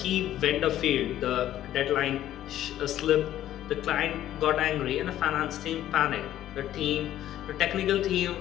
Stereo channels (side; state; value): right; quieter; 12.5 dB